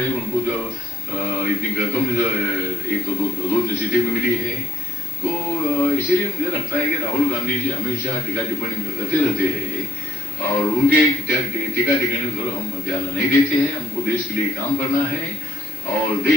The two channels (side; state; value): both; normal; correlation 0.72